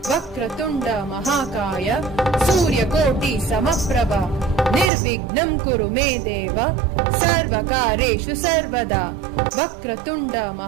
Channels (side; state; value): left; drops out; at 4.9 s